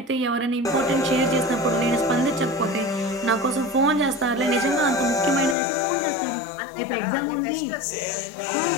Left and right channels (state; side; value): drops out; right; at 5.6 s